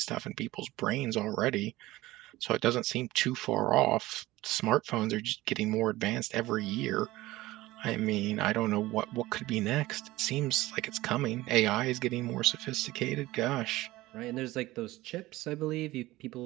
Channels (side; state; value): left; quieter; 18.1 dB